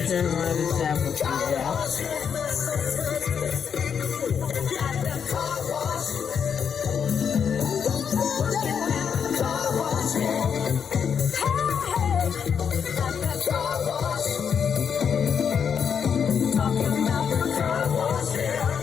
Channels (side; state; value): right; quieter; 7.2 dB